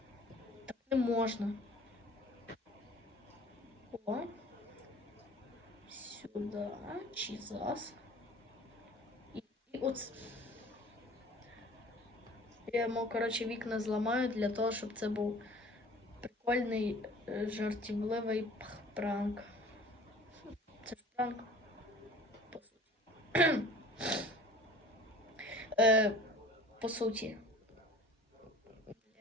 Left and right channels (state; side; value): normal; both; correlation 0.46